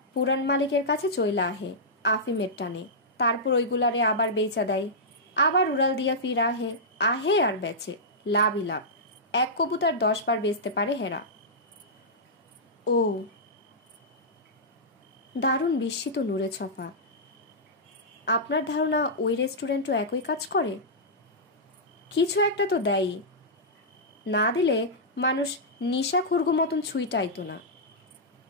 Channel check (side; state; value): both; normal; correlation -0.12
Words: পুরান মালিকের কাছে চইলা আহে আফিমের টানে, তারপর ওইগুলারে আবার বেচা দেয়, আবার উড়াল দিয়া ফির আহে, আহে আর বেচে, লাভই লাভ। এক কবুতর 10 বার বেচতে পারে হেরা। ও, দারুণ বিস্মিত নূরে ছফা। আপনার ধারণা ওই রেস্টুরেন্টও একই কাজ করে? কিছু একটা তো দেয়ই, না দিলে মানুষ নিশা খুরগু মতন ছুঁইটাইতো না।